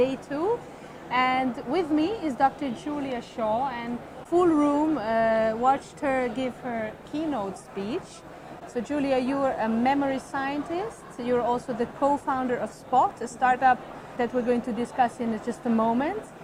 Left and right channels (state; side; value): identical; both; correlation 1.00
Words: 2, and with me is Dr. Julia Shaw, and full room watched her give her keynote speech. So Julia, you're a memory scientist. You're also the co-founder of Spot, a startup that we're going to discuss in just a moment.